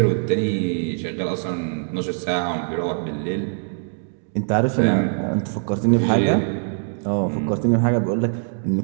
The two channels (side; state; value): left; silent; digital silence